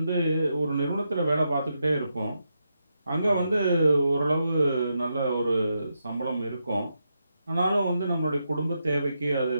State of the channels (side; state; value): both; inverted; correlation -0.84